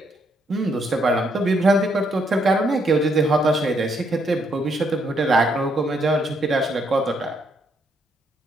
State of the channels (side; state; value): both; normal; correlation 0.73